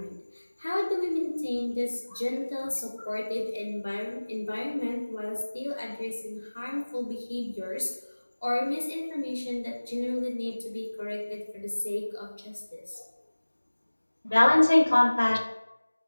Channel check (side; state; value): both; inverted; correlation -1.00